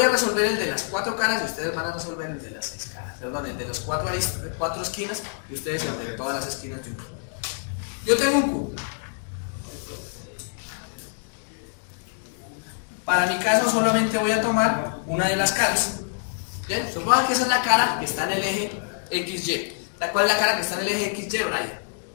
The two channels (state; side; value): silent; right; digital silence